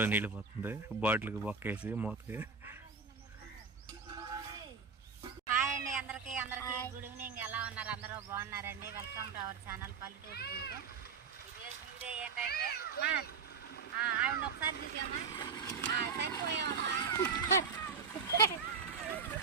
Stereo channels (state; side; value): quieter; left; 5.4 dB